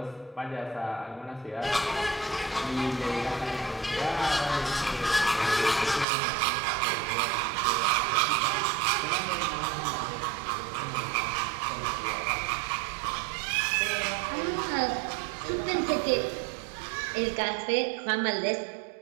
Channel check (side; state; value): left; drops out; at 6.1 s